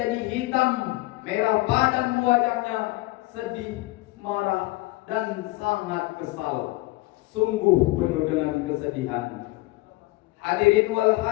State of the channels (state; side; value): quieter; right; 20.8 dB